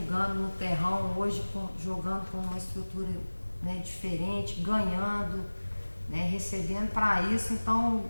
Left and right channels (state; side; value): inverted; both; correlation -1.00